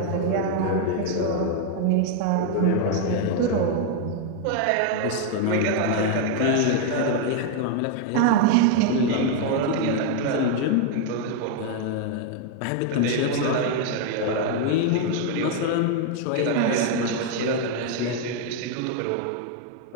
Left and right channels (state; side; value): different; both; correlation 0.00